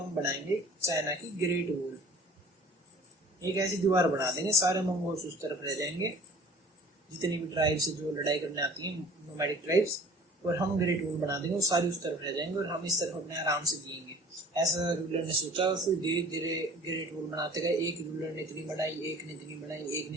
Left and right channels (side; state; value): both; normal; correlation 0.47